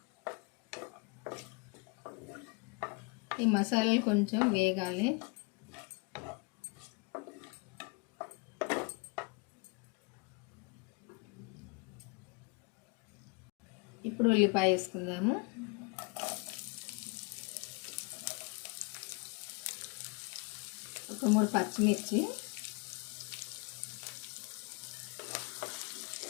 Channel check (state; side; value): quieter; right; 29.4 dB